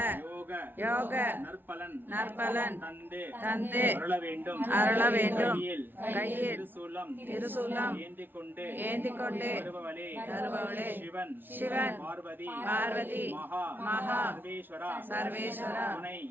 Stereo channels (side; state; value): left; late; 0.096 ms